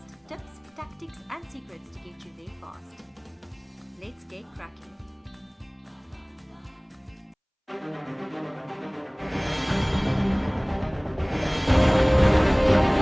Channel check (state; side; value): identical; both; correlation 1.00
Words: tips, tactics, and secrets to get you there fast. Let's get cracking.